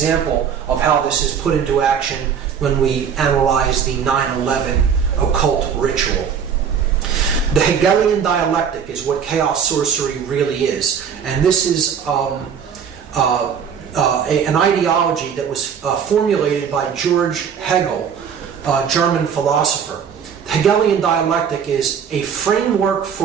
of how this is put into action when we analyze the 9/11 occult ritual. The Hegelian dialectic is what chaos sorcery really is, and this is an ideology that was formulated by George Hegel, a German philosopher. The Hegelian dialectic is a framework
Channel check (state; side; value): quieter; left; 7.4 dB